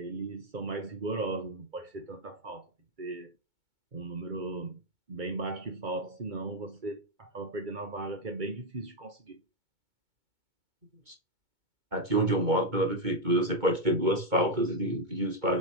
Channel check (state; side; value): late; left; 2.2 ms